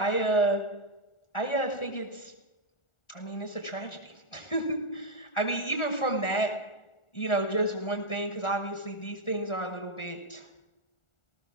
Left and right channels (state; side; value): late; right; 1.4 ms